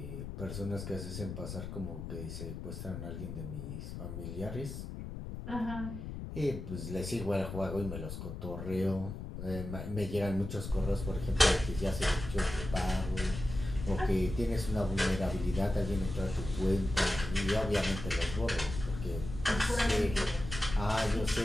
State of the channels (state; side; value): noise; left; rumble, 8 dB below the sound